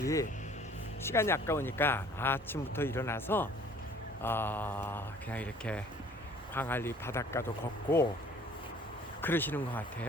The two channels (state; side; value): normal; both; correlation 0.53